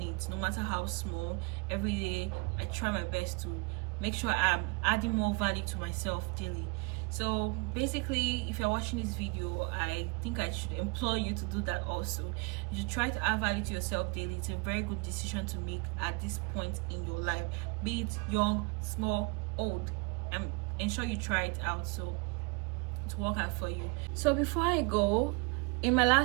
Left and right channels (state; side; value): quieter; left; 29.6 dB